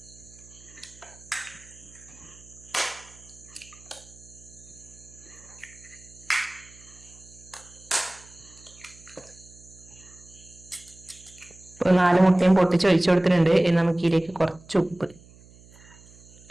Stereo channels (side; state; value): right; noise; hum, 23 dB below the sound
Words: ഇപ്പൊ 4 മുട്ടയും പൊട്ടിച്ച് ഒഴിച്ചു കൊടുത്തിട്ടുണ്ട്. ഇനി നമുക്ക് ഇതിലേക്ക് കുറച്ച് ഉപ്പ്,